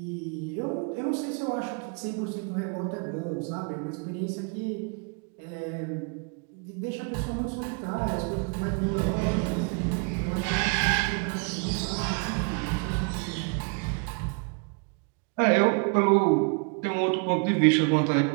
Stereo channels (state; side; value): quieter; left; 35.5 dB